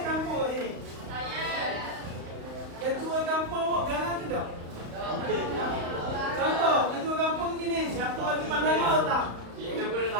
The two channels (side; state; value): left; late; 35 ms